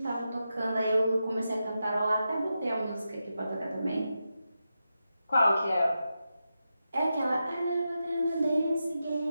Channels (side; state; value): both; inverted; correlation -0.89